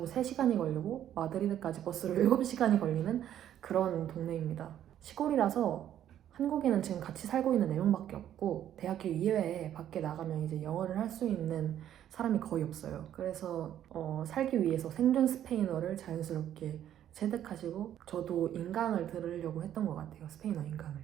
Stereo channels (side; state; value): left; quieter; 10.9 dB